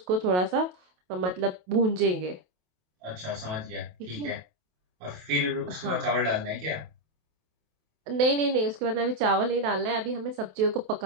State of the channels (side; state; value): left; late; 28 ms